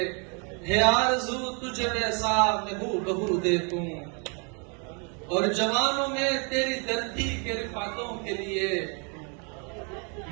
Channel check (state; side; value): quieter; left; 36.3 dB